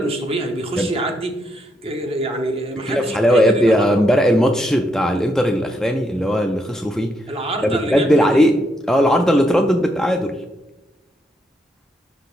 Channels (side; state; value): both; normal; correlation 0.77